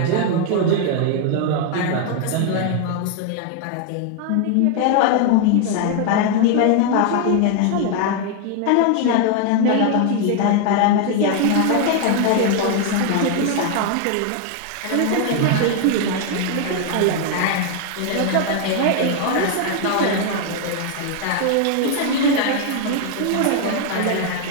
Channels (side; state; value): both; different; correlation 0.00